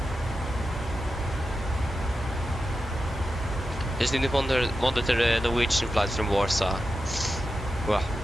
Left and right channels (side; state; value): both; normal; correlation 0.90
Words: Just need to monitor the Norwegian flight from Warsaw. Wow.